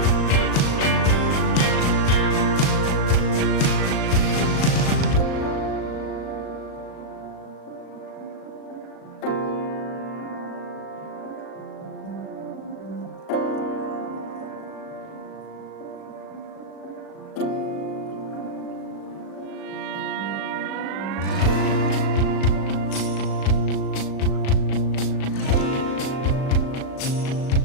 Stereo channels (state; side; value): late; right; 38 ms